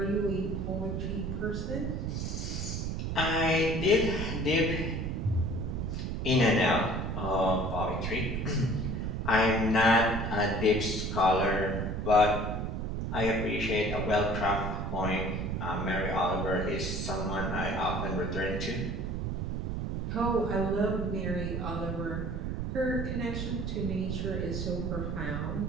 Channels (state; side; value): noise; right; rumble, 2 dB below the sound